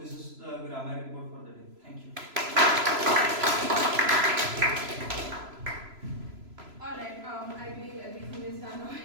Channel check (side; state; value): left; late; 3.0 ms